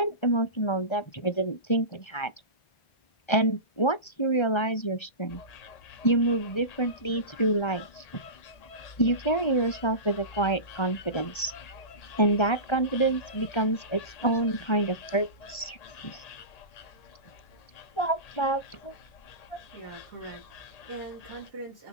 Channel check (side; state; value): right; late; 1.3 ms